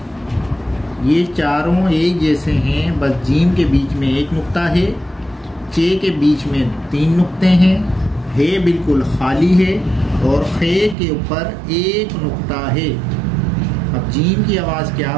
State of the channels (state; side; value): drops out; left; at 11.0 s